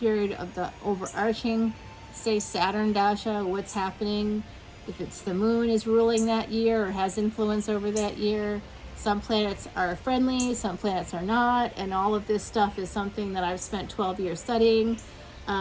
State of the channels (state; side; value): identical; both; correlation 1.00